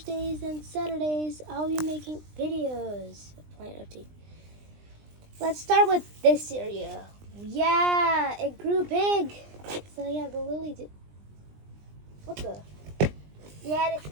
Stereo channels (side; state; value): left; late; 20 ms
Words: and Saturdays, I'll be making videos of Plant Update. Let's start with this area. Yeah, it grew big. So yeah, the lily did. What the? Yeah, this